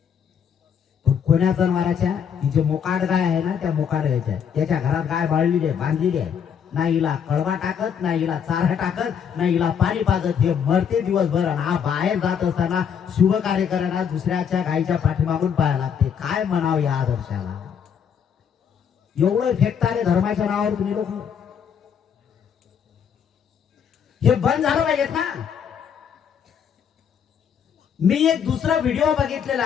पण कोण्या जनावराच्या? ती जे मोकाट गाय आहे ना, त्या मोकाट गायच्या, त्याच्या घरात गाय बाळलेली आहे, बांधलेली आहे. ना हिला कळवा टाकत, ना हिला चारा टाकत, ना हिला पाणी पाजत. हे मरते दिवसभर. आणि हा बाहेर जात असताना शुभ कार्य करायला दुसऱ्याच्या गायीच्या पाठीमागून पाहायला लागते. काय म्हणावं या आदर्शाला? एवढं फेकतारे धर्माच्या नावावर तुम्ही लोक. हे बंद झालं पाहिजेत ना. मी एक दुसरा व्हिडिओ बघितलेला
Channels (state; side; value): quieter; right; 7.7 dB